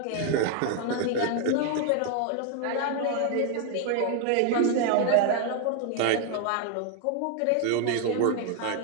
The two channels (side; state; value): both; different; correlation 0.00